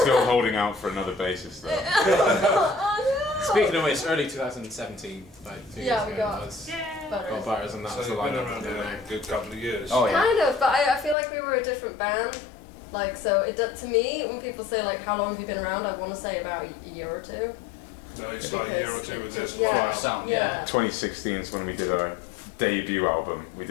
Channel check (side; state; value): right; drops out; at 11.2 s